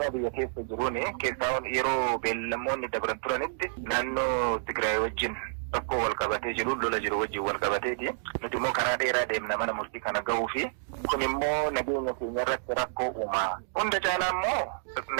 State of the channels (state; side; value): silent; left; digital silence